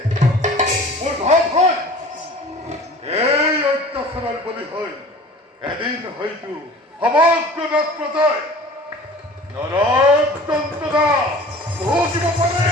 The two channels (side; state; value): both; normal; correlation 0.43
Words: মোৰ ভাৱ হয় এই অত্যাচাৰৰ বলি হৈ এদিন হয়তো সমগ্ৰ নাথ প্ৰজাই নৰক যন্ত্ৰণা ভুগিব পাৰে